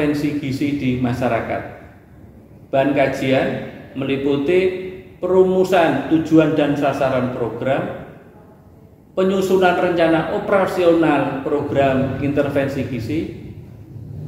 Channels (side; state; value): both; identical; correlation 1.00